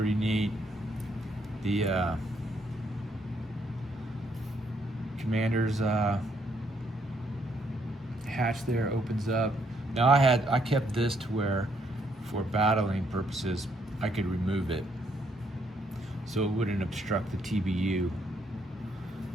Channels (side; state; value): both; normal; correlation 0.72